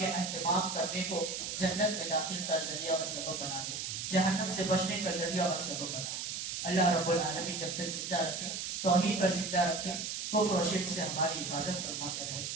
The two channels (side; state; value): right; noise; hiss, 4 dB below the sound